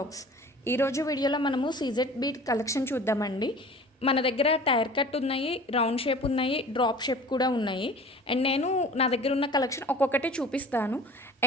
ఈరోజు వీడియోలో మనము సీజెడ్ బీట్ కలెక్షన్ చూద్దామండి. మన దగ్గర టైర్ కట్ ఉన్నాయి, రౌండ్ షేప్ ఉన్నాయి, డ్రాప్ షేప్ కూడా ఉన్నాయి. అండ్ నేను నా దగ్గర ఉన్న కలెక్షన్ ఒక్కొక్కటి చూపిస్తాను.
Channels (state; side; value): normal; both; correlation 0.43